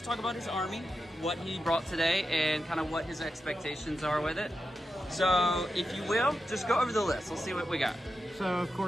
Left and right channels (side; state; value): both; normal; correlation 0.90